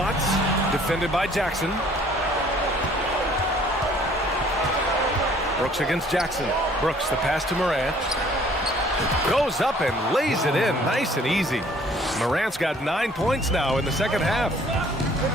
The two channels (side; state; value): both; normal; correlation 0.57